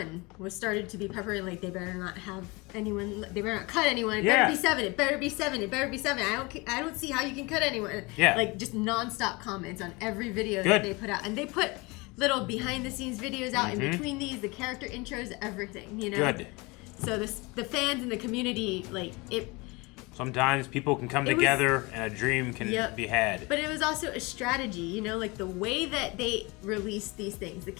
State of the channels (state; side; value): quieter; right; 25.5 dB